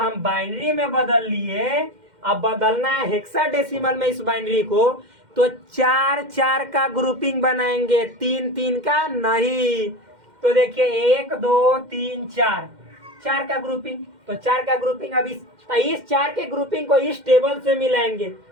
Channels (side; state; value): left; late; 2.1 ms